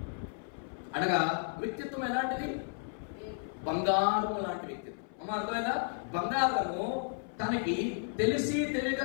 అనగా వ్యక్తిత్వం ఎలాంటిది? బంగారము లాంటి వ్యక్తిత్వం. అర్థమైందా? బంగారము తనకి తెలిసి తెలియక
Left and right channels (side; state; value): right; silent; 56 dB below the other